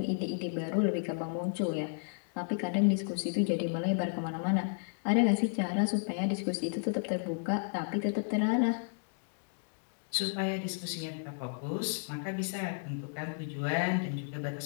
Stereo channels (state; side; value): silent; right; digital silence